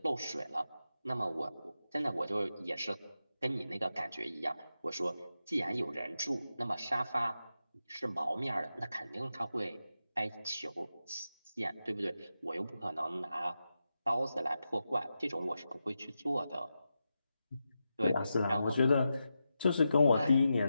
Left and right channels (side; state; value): both; inverted; correlation -0.89